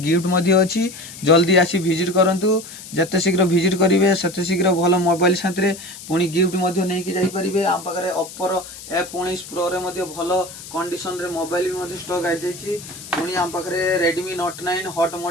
अच्छी जल्दी आसी विजिट करूँ जिते शीघ्र विजिट करेंगे सेते शीघ्र भल मोबाइल साथी पुणी गिफ्ट नहीं जापरेंगे आम पाखे ओप्पोर F19 प्रो रे भल कंडीशन रे मोबाइल भी स्टक आई जाइए पुणी आम पाखे रेडमी Note 9 हॉट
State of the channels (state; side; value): noise; left; hiss, 14 dB below the sound